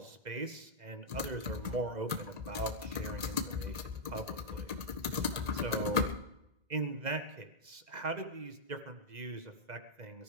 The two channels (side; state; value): left; late; 1.8 ms